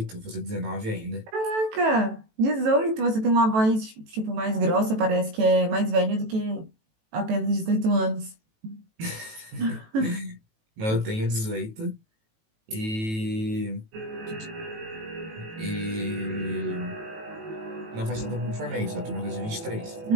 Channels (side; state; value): left; late; 18 ms